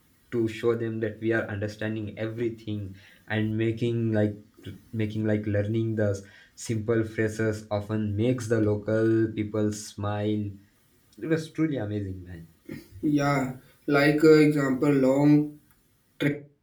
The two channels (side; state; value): both; identical; correlation 1.00